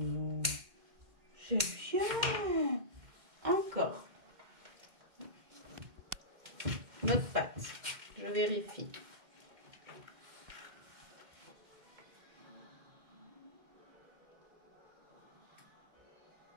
C'est bien. Encore. Notre patte. Je vérifie.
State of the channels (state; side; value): late; left; 2.1 ms